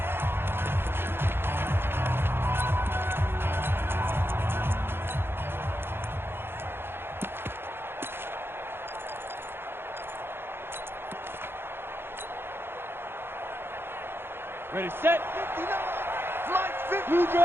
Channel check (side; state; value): left; late; 0.11 ms